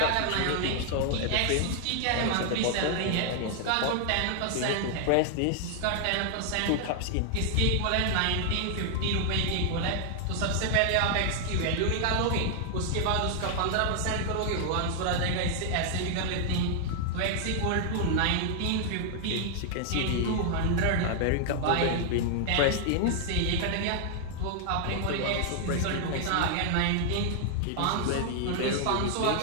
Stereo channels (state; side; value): different; both; correlation -0.01